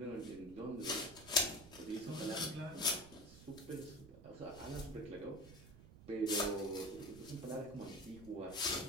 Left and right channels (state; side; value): noise; right; rumble, 17 dB below the sound